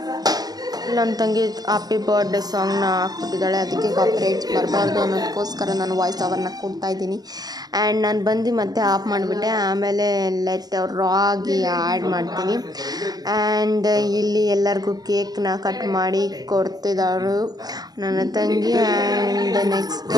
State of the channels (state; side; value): late; left; 0.19 ms